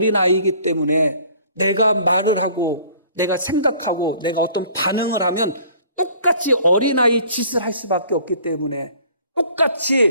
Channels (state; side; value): inverted; both; correlation -0.53